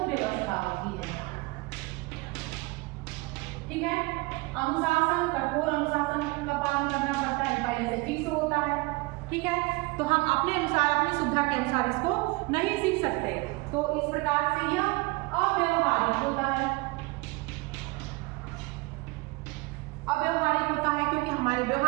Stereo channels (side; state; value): left; quieter; 24.5 dB